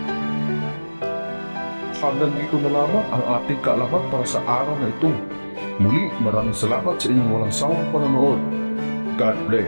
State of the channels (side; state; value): both; inverted; correlation -1.00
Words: Hanggang dito na lamang ang ating kaalaman para sa araw na ito. Muli, maraming salamat sa inyong walang sawang panonood. God